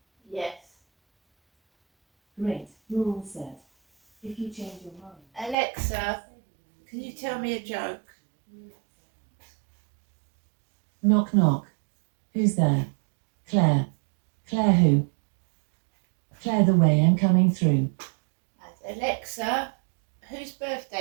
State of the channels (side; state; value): left; drops out; at 5.6 s